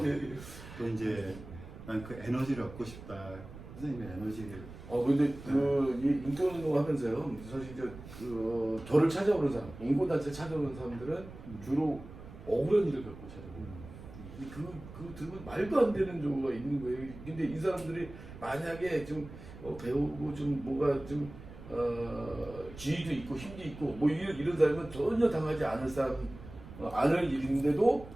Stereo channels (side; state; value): right; noise; rumble, 15 dB below the sound